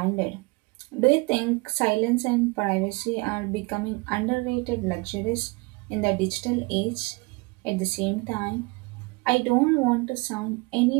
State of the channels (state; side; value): quieter; left; 26.6 dB